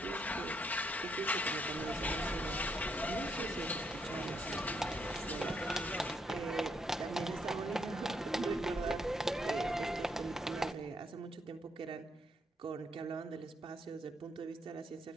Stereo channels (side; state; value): both; normal; correlation 0.75